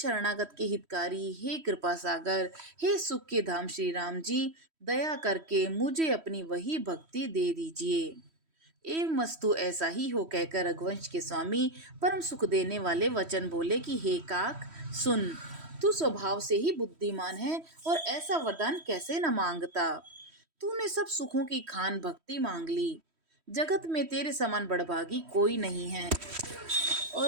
के हितकारी, हे कृपा सागर, हे सुख के धाम श्री राम जी, दया करके मुझे अपनी वही भक्ति दे दीजिए। एवं मस्तु ऐसा ही हो, कहकर रघुवंश के स्वामी परम सुख देने वाले वचन बोले कि हे काक सुन, तू स्वभाव से ही बुद्धिमान है और ऐसा वरदान कैसे न मांगता। तूने सब सुखों की खान भक्ति मांग ली। जगत में तेरे समान बड़भागी कोई नहीं है।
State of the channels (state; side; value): late; left; 3.1 ms